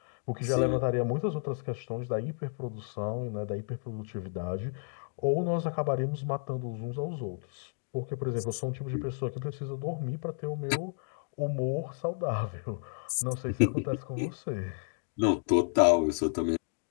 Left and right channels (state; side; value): silent; right; digital silence